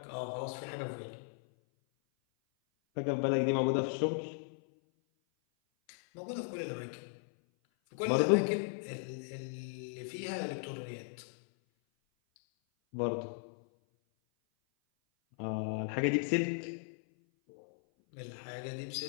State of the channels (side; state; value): right; silent; 53 dB below the other